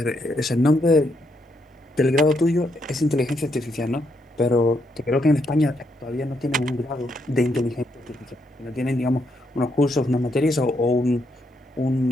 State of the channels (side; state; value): both; normal; correlation 0.77